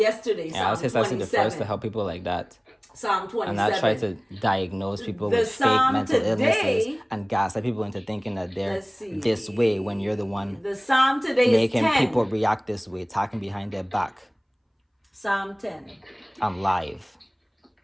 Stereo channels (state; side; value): identical; both; correlation 1.00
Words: Yeah, I was the first to help people like that. Psalm 27. And not try to diagnose people with fake mental illnesses and gaslight people into thinking that they're this way when you're the one the Psalm today making is 10. people react this way, talking behind their back. Psalm 10. I'm live.